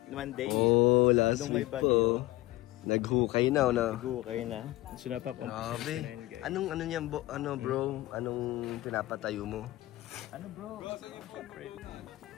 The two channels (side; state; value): right; quieter; 18.0 dB